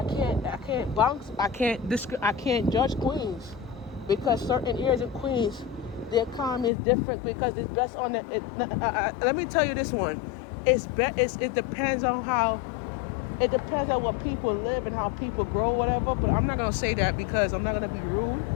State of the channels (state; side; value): drops out; right; at 6.7 s